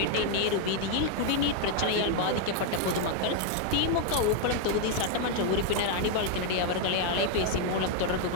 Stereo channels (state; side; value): different; both; correlation 0.01